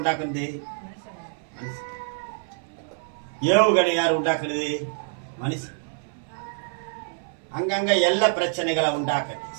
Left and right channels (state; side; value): silent; left; 57 dB below the other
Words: ஏவுகணை யாரு உண்டாக்குறது? மனுஷன். அங்கங்க எல்லை பிரச்சனைகளை உண்டாக்குறது,